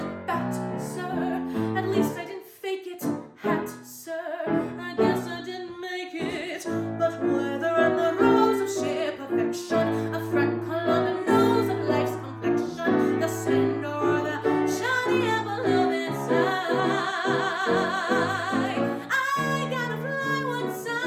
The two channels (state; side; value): identical; both; correlation 1.00